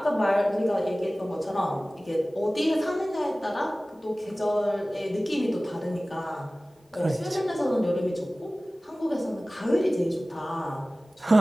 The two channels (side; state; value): both; normal; correlation 0.98